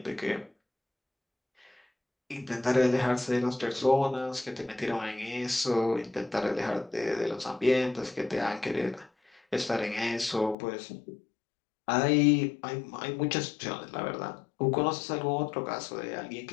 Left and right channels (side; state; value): right; drops out; at 10.6 s